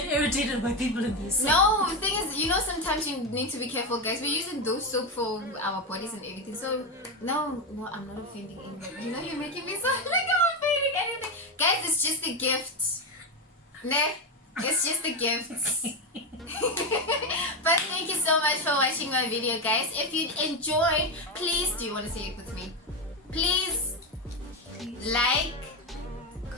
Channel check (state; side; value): normal; both; correlation 0.12